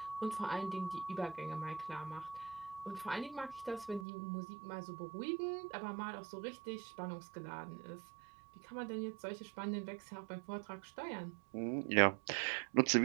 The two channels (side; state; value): left; drops out; at 4.0 s